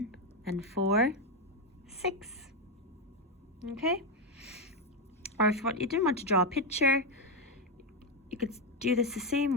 and 4, 6. Okay? Or if you didn't want to draw a picture, you could do this the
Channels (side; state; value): both; normal; correlation 0.07